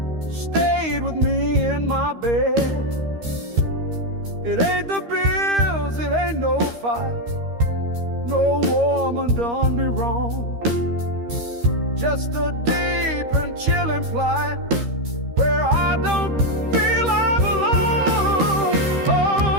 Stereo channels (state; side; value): late; left; 13 ms